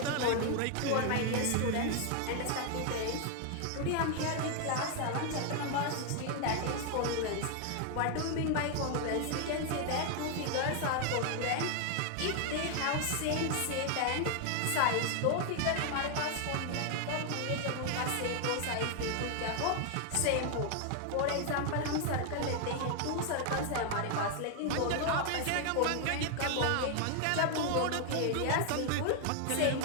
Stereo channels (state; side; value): different; both; correlation 0.00